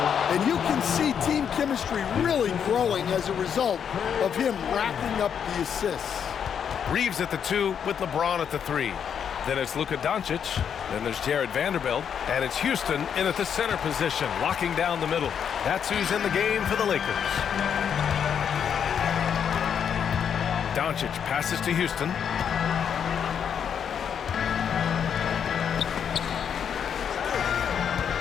And you can see team chemistry really growing as a result of him racking up the assists. Reeves at the 2 with LeBron at the 3. Then it's Luka Doncic. Then there's Jared Vanderbilt. And it's Houston in at the center position, locking down the middle. That's who's in the game for the Lakers. Doncic passes to Houston.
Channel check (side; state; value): right; quieter; 7.9 dB